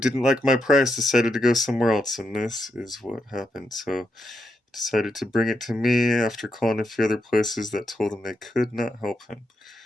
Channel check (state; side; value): normal; both; correlation 0.83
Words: like my price decided to go somewhere else, and this is what happened. So, he decided to bring it to me after calling a few other places that told him they could not help him.